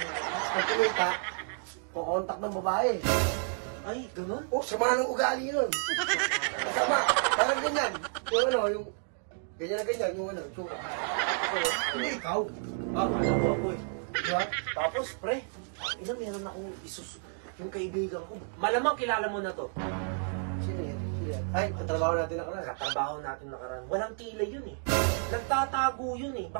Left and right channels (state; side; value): silent; left; 57 dB below the other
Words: Pag kumita, pukontak ng babae. Ay, ganun? Oh, sama ng ugali nun. Sama. Parang ganyan. Yung ganyan na ganyan, yung itsura. Hindi ikaw. Kaya po ako eh. Diba? Tapos, pre, meron akong yung kaibigan ko. Malamang kilala mo na to. Sino yun? Ay, katrabaho natin nakaraan. Trabaho natin nakaraan. Walang kilay yun eh. Nagtatago yun eh.